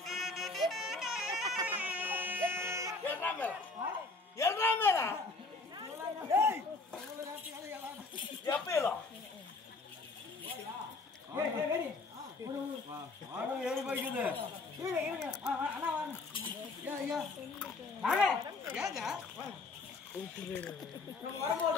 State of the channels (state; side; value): quieter; right; 3.6 dB